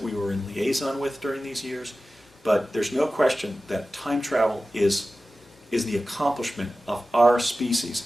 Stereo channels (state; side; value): normal; both; correlation 0.95